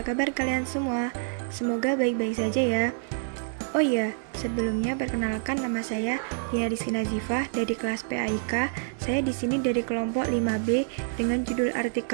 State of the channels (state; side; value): silent; left; digital silence